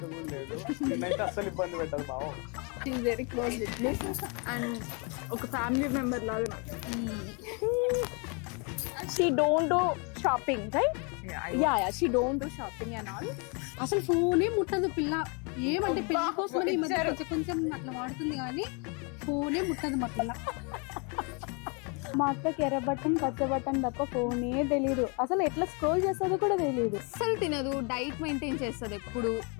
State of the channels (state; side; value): quieter; right; 34.0 dB